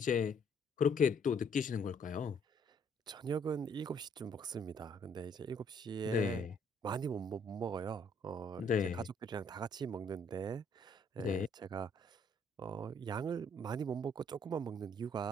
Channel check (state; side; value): normal; both; correlation 0.65